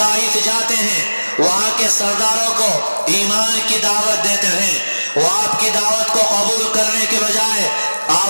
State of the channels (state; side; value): inverted; both; correlation -1.00